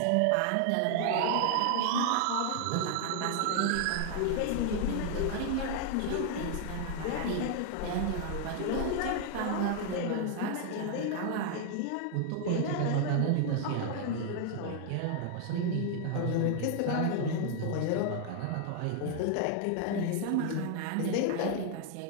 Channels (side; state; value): both; different; correlation 0.00